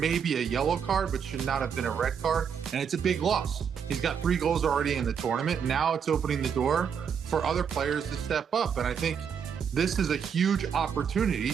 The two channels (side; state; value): left; quieter; 7.3 dB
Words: a yellow card, but should not have been a red card, and it's a big loss. He's got 3 goals already in the tournament. Now it's opening the door for other players to step up, and I think this is a huge opportunity